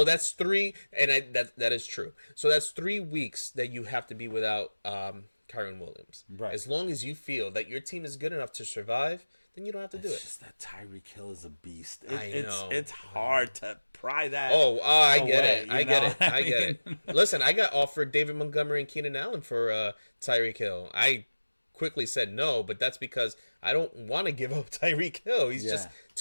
that's 3, and that is true. So that's 3 weeks that you have to be without Kyron Williams. Right. As long as you feel that your team is good enough to survive, then you don't have to do it. It's just that Tyreek Hill is a beast. I know. It's hard to pry that. I get away, it. I get it. Listen, I got offered David Montgomery and Keenan Allen for Tyreek Hill. I quickly said no, but that's because I don't want to give up Tyreek Hill. He's just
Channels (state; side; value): inverted; both; correlation -1.00